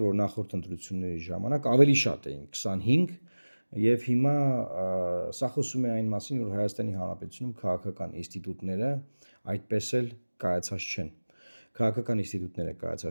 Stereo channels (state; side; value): inverted; both; correlation -1.00